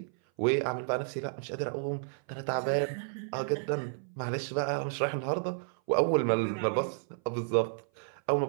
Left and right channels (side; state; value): left; silent; 56 dB below the other